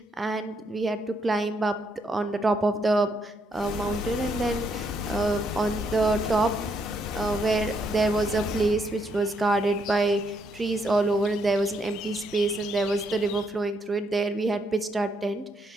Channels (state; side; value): normal; both; correlation 0.74